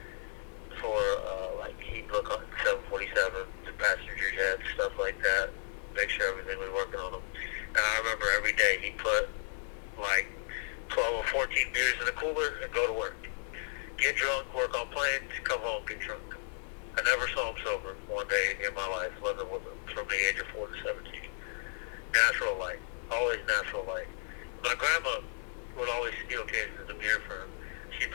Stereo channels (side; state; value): right; silent; digital silence